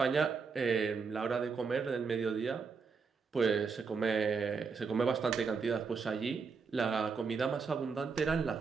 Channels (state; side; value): quieter; left; 5.2 dB